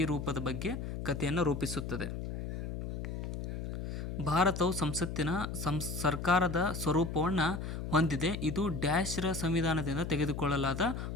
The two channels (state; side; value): noise; left; hum, 5 dB below the sound